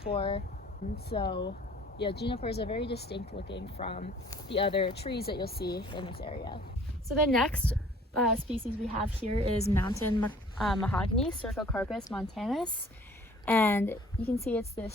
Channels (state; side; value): normal; both; correlation 0.53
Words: And so, yeah, junipers are very distinct looking from the other trees that you'll see in this area. So the next species we have here is mountain mahogany, CERCOCARPUS montanus. And you can see it's